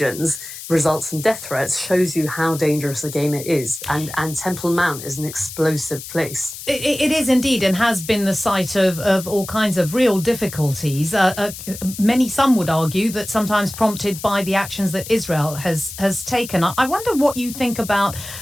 results in death threats shows you how dangerous a game it is. And Temple Mount is an explosive place. It is indeed, and has been the site of all kinds of real difficulties. Some would argue that sometimes prompted by the actions that Israel has taken. I wonder what you think about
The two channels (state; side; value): noise; left; hiss, 12 dB below the sound